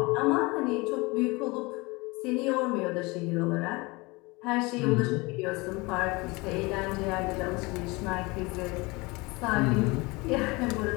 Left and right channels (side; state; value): right; quieter; 24.7 dB